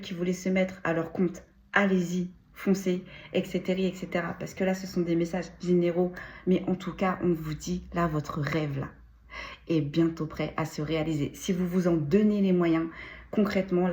qui voulaient se mettre à leur compte, allez-y, foncez, etc., etc. Parce que là, ce sont des messages généraux. Mais en tout cas, on vous dit, là, votre rêve, là, est bientôt prêt à se réaliser. Si vous vous en donnez les moyens, concrètement,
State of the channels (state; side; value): identical; both; correlation 1.00